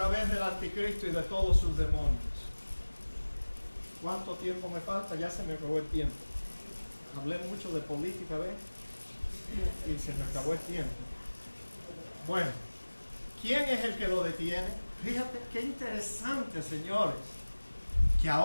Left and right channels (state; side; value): inverted; both; correlation -1.00